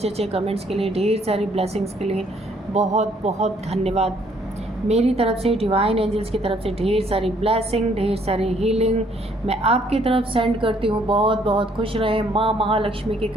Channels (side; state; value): both; normal; correlation 0.65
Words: अच्छे कमेंट्स के लिए, ढेर सारी ब्लेसिंग्स के लिए बहुत बहुत धन्यवाद। मेरी तरफ से, डिवाइन एंजल्स की तरफ से ढेर सारी ब्लेसिंग, ढेर सारी हीलिंग मैं आपकी तरफ सेंड करती हूँ। बहुत बहुत खुश रहे। माँ महालक्ष्मी की